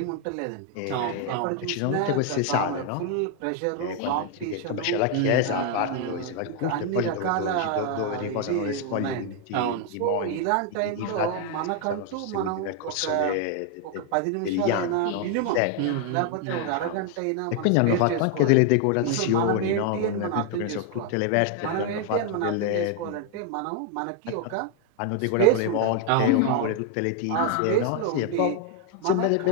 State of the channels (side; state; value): both; different; correlation 0.00